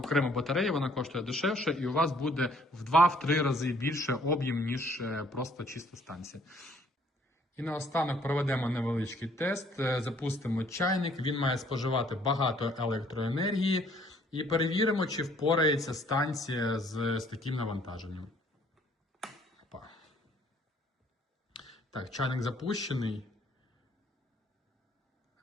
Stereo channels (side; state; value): both; normal; correlation 0.61